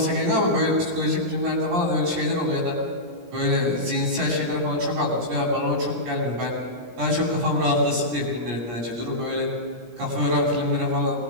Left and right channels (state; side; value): late; left; 17 ms